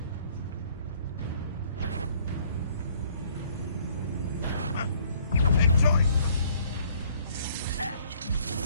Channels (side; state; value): both; inverted; correlation -0.60